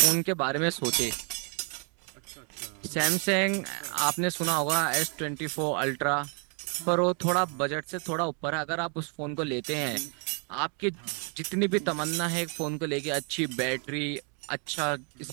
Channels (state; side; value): quieter; left; 38.6 dB